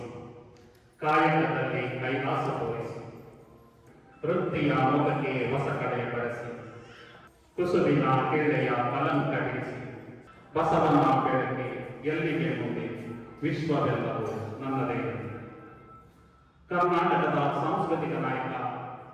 ಕಾಯಕದಲ್ಲಿ ಕೈಲಾಸ ತೋರಿಸಿ, ವೃತ್ತಿಯ ಮುಖಕ್ಕೆ ಹೊಸ ಕಡೆ ಬಳಸಿ, ಕುಸುಬಿನ ಕೆಳ್ಳೆಯ ಕಲಂಕ ಬಿಡಿಸಿ, ಬಸವನ ಬೆಳಕೆ ಎಲ್ಲಿಗೆ ಮುಂದೆ, ವಿಶ್ವವೆಲ್ಲವೂ ನನ್ನದೇ. ಕರ್ನಾಟಕದ ಸಾಂಸ್ಕೃತಿಕ ನಾಯಕ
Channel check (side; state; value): both; identical; correlation 1.00